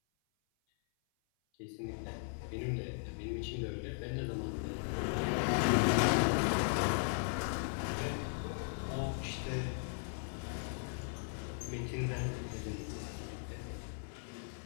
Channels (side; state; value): right; silent; 53 dB below the other